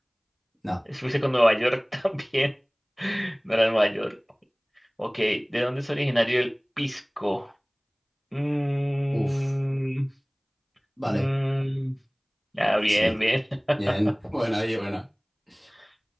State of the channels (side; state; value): both; identical; correlation 1.00